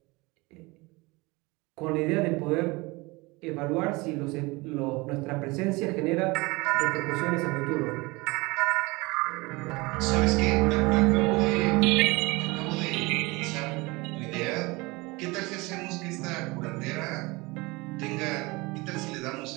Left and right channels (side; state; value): left; quieter; 24.0 dB